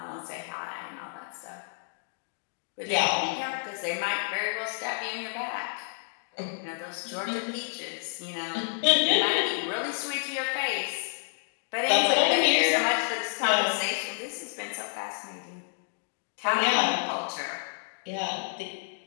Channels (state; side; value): silent; right; digital silence